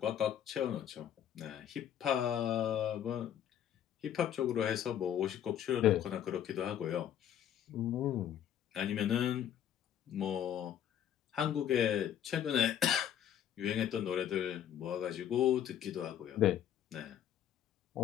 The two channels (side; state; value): right; quieter; 10.2 dB